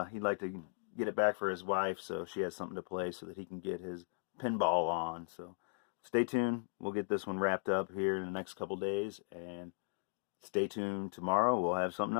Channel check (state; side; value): silent; right; digital silence